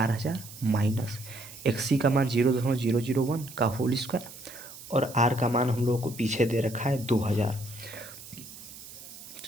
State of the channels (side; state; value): right; noise; hiss, 15 dB below the sound